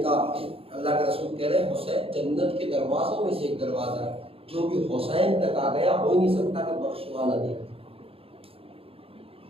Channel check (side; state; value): left; late; 0.27 ms